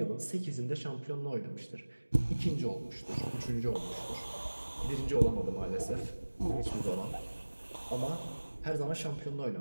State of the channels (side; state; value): both; inverted; correlation -1.00